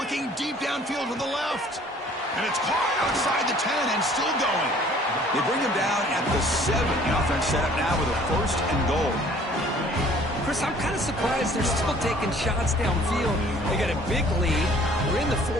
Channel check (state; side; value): normal; both; correlation 0.54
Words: deep downfield to the left. And it's caught outside the 10 and still going. They bring him down at the 7. The offense set up now with a 1st and goal. Chris, I'm kind of surprised they're still taking shots downfield. They got a big lead. We're in the